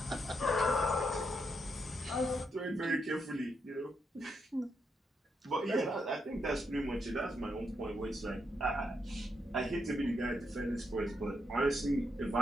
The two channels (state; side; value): normal; both; correlation 0.80